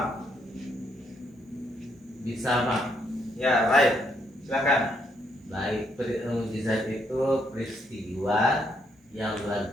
Bisa Pak. Ya, baik. Silakan. Baik, mukjizat itu peristiwa yang luar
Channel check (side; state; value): both; normal; correlation 0.74